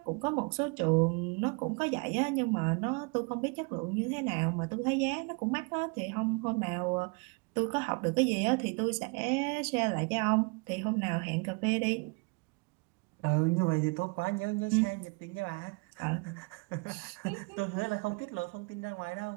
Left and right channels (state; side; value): quieter; left; 31.4 dB